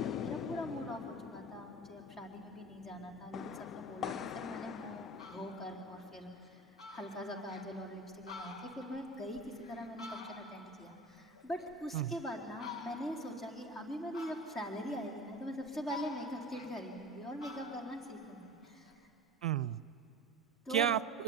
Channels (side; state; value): both; normal; correlation 0.34